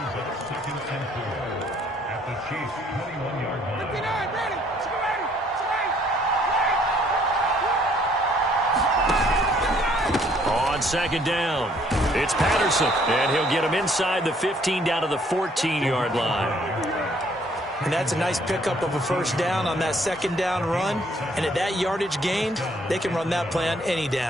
On second down, it's Patterson, and he'll get him inside the 15 down to the 14-yard line. And that's a nice pickup of a first down on that second down run. And at that yardage gained, they can run that play on any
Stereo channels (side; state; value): both; normal; correlation 0.63